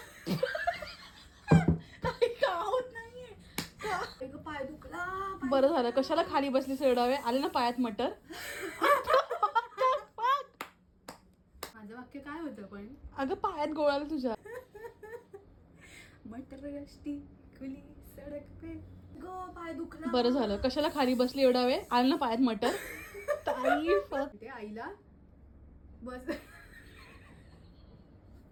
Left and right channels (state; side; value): identical; both; correlation 1.00